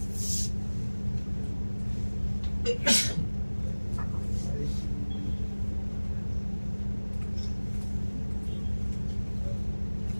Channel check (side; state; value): both; inverted; correlation -1.00